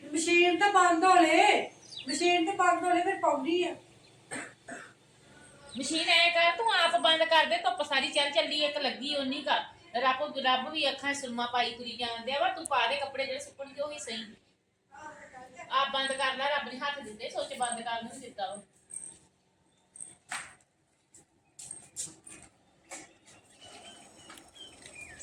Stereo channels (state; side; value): identical; both; correlation 1.00